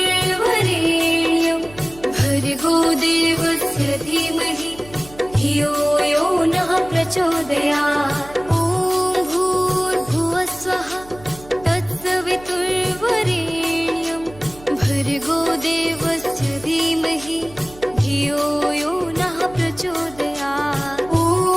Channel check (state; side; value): noise; right; hum, 20 dB below the sound